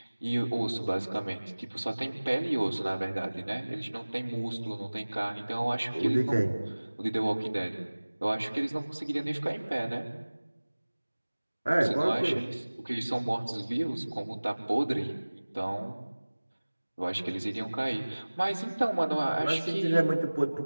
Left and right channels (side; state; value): both; inverted; correlation -1.00